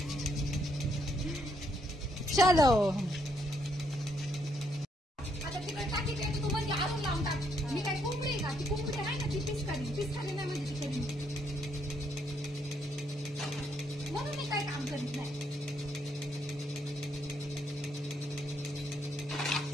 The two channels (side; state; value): both; normal; correlation 0.74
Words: चलो आता तिकडे टाकी ते तू म्हणजे आरून लावून टाक. मी काय कोंबडी का? ती कोंबडी आहे ना, ती पिस्कारी नाही म्हणजे ती कधी, म्हणून मी काय काम करीत नाही.